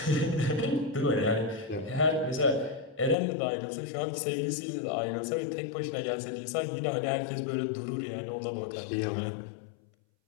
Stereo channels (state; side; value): drops out; right; at 3.2 s